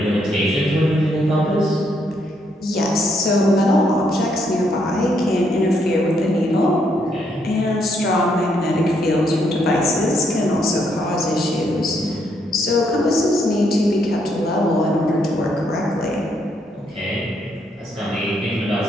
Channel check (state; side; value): normal; both; correlation 0.74